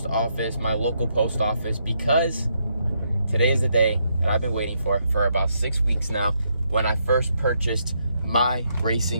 office, my local post office, because today is the day that I've been waiting for about 6 weeks now, when I first purchased my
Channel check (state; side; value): inverted; both; correlation -0.77